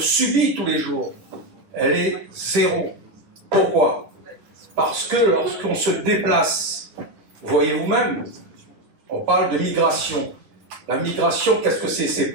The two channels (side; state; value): left; late; 9.9 ms